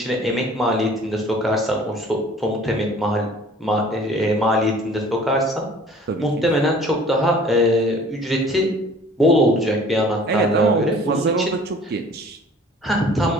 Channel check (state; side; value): normal; both; correlation 0.50